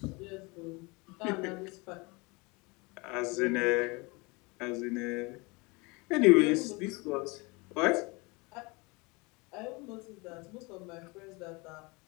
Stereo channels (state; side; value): quieter; right; 26.9 dB